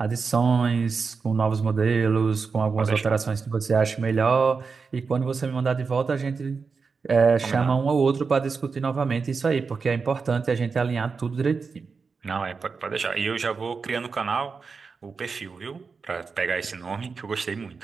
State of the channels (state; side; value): quieter; left; 5.0 dB